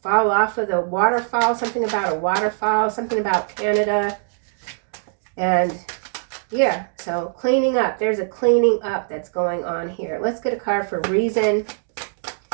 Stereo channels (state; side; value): silent; left; 64 dB below the other